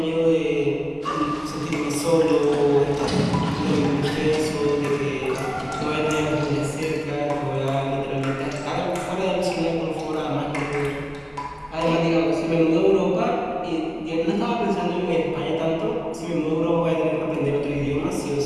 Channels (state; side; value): identical; both; correlation 1.00